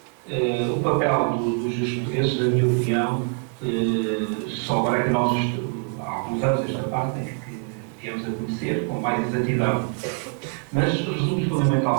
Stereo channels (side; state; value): left; quieter; 38.9 dB